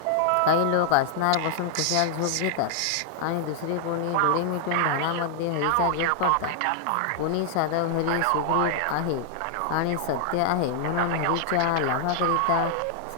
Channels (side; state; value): both; different; correlation 0.00